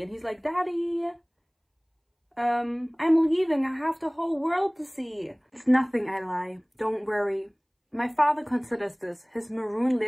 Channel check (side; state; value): both; identical; correlation 1.00